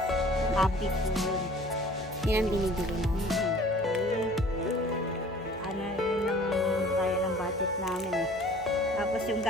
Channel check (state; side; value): normal; both; correlation 0.49